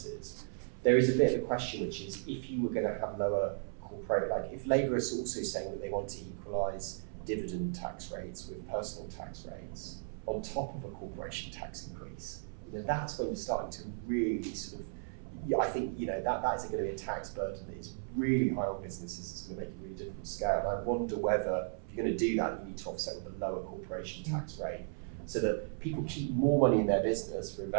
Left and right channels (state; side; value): silent; left; 54 dB below the other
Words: There is a bit of a question, which is, if you were going to have lower corporate, like if Labour is also saying that they want to equalise dividend tax rates with personal tax rates on top of a corporation tax increase, that's when you're starting to really sort of, I think, that is going to be a tax burden that is really high on businesses. It's going to make it really difficult to scale. And I wonder whether, if you're going to do that, you need to offset with a lower corporation tax rate, so that people keep more money in their business for